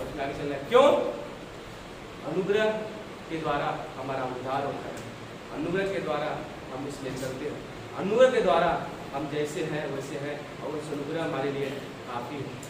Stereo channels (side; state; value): both; identical; correlation 1.00